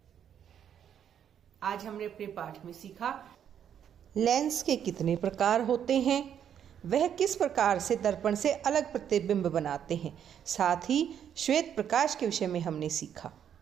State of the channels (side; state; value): left; quieter; 9.0 dB